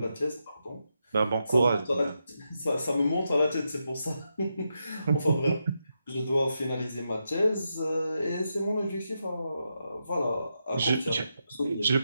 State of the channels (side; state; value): both; inverted; correlation -0.85